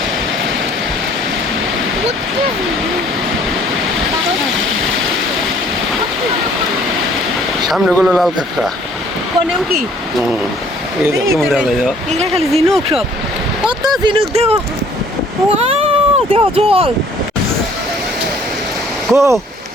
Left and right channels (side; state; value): both; normal; correlation 0.57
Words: সামনে গুলো লাল কাঁকড়া। কোনেও কি এই যে কেমন দেখা যায়। এগুলা খালি ঝিনুক সব, কত ঝিনুক দেও, ওয়াও দেও জল। কো